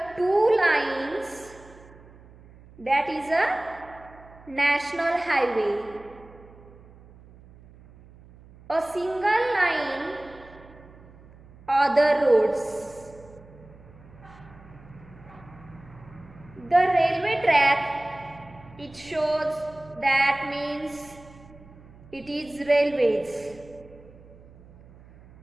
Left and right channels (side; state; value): right; noise; hum, 22 dB below the sound